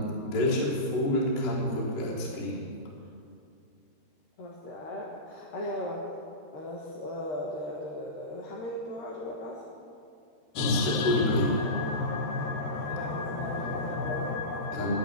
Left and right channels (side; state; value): right; late; 13 ms